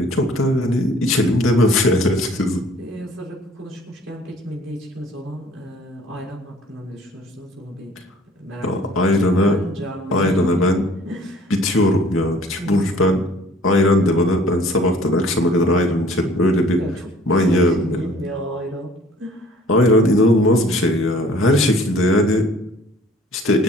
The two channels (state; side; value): normal; both; correlation 0.54